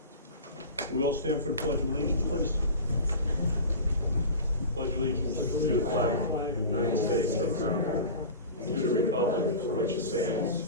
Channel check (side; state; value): both; inverted; correlation -0.32